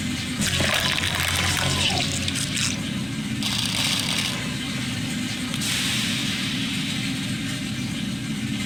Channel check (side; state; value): right; noise; hum, 21 dB below the sound